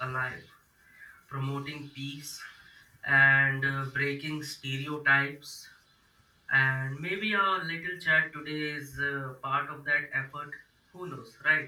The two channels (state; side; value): identical; both; correlation 1.00